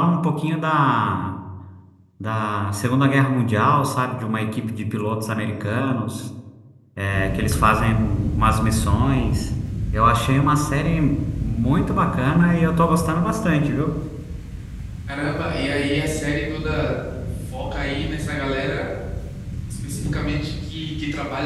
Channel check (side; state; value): both; identical; correlation 1.00